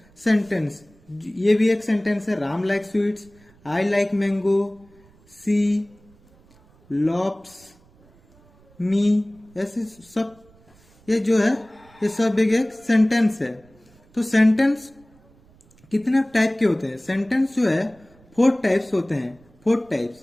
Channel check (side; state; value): right; noise; rumble, 29 dB below the sound